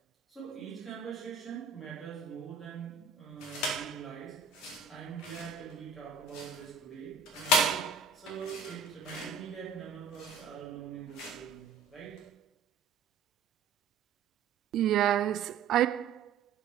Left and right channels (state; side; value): quieter; left; 5.3 dB